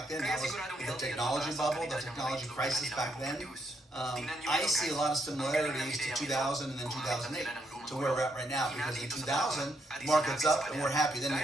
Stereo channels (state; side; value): normal; both; correlation 0.76